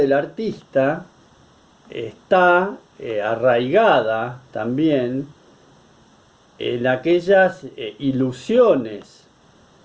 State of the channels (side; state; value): both; identical; correlation 1.00